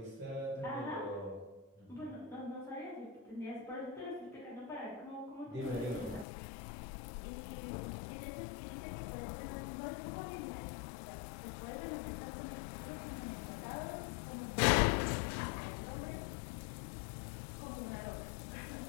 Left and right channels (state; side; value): drops out; right; at 6.2 s